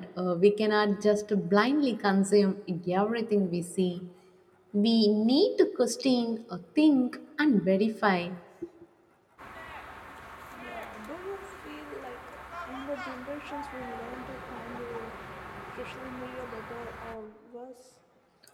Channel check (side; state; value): both; identical; correlation 1.00